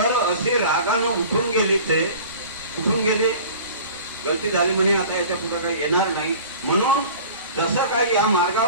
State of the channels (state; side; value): inverted; both; correlation -0.42